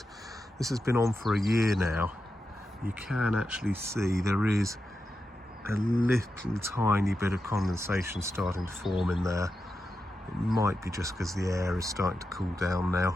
This has been on for a year now. You can actually see there is a little tiny bit of condensation starting to form in there. It might be just because the air is starting to cool down now.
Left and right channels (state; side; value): normal; both; correlation 0.88